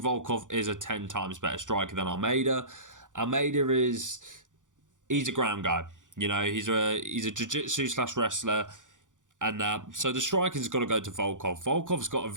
Volkov is a 10 times better striker than Almeida. Almeida he's a ground guy. You know, he's a jiu-jitsu / wrestler. And so the striking's got to go to Volkov. Volkov's got a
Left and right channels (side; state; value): left; late; 0.87 ms